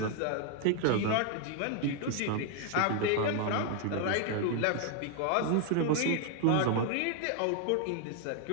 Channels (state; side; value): different; both; correlation 0.00